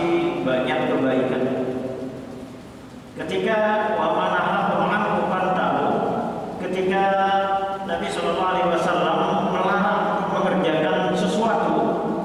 banyak kebaikan. Ketika wa manahakum anhu fantahu, ketika Nabi sallallahu alaihi wasallam melarang mengerjakan sesuatu,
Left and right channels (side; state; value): both; identical; correlation 1.00